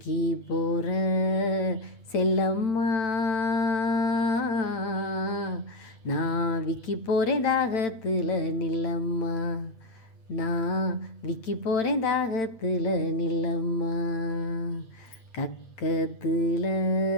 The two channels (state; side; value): late; right; 9.0 ms